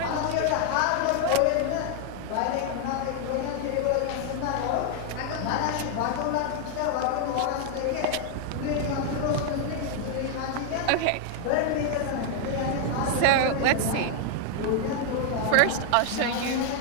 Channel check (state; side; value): different; both; correlation 0.00